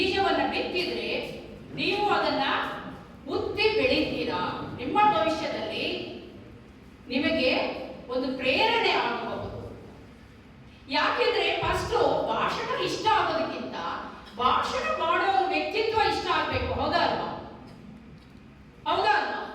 ಬಿತ್ತಿದ್ರೆ ನೀವು ಅದನ್ನ ಉತ್ತಿ ಬೆಳೀತೀರಾ. ನಿಮ್ಮ ಭವಿಷ್ಯದಲ್ಲಿ ನಿಮಗೆ ಒಂದು ಪ್ರೇರಣೆ ಆಗಬಹುದು. ಯಾಕೆಂದ್ರೆ ಫಸ್ಟ್ ಭಾಷಣ ಇಷ್ಟ ಆಗೋದಕ್ಕಿಂತ ಭಾಷಣ ಮಾಡೋ ವ್ಯಕ್ತಿತ್ವ ಇಷ್ಟ ಆಗ್ಬೇಕು. ಹೌದಾ ಅಲ್ವಾ? ಹೌದಾ ಅಲ್ವಾ?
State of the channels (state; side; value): identical; both; correlation 1.00